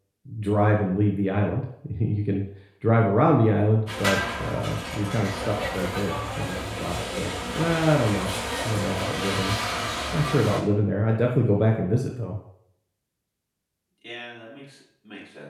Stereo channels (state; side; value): identical; both; correlation 1.00